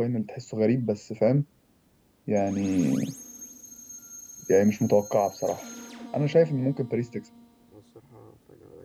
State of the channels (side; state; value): both; identical; correlation 1.00